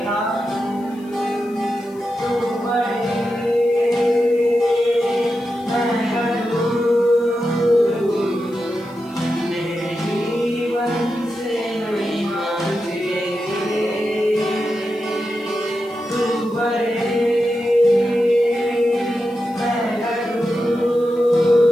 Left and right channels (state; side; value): noise; left; hiss, 28 dB below the sound